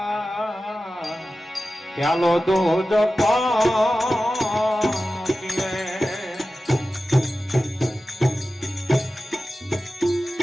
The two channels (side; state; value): both; normal; correlation 0.94